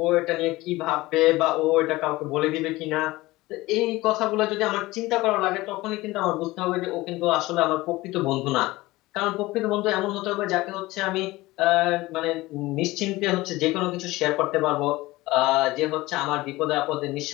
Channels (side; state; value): right; quieter; 19.5 dB